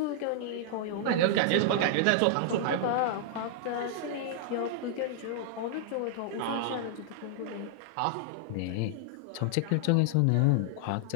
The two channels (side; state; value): both; different; correlation -0.01